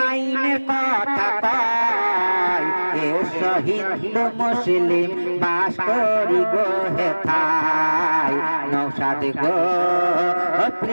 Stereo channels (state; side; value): inverted; both; correlation -1.00